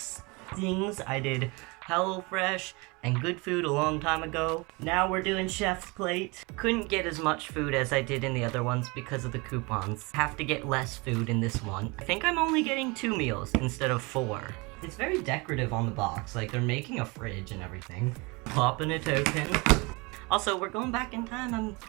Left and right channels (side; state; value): left; quieter; 27.1 dB